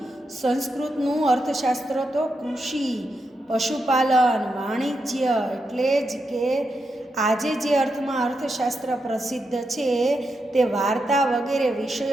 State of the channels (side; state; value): both; normal; correlation 0.85